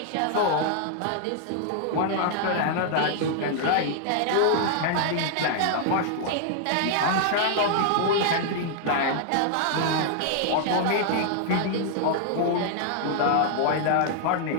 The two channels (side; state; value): both; different; correlation -0.01